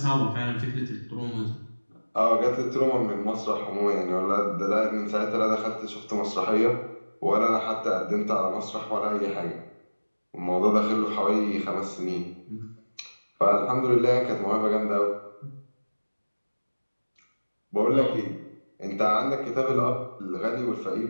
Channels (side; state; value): both; inverted; correlation -1.00